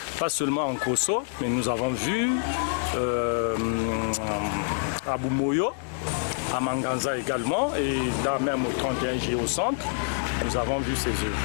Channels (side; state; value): right; silent; 60 dB below the other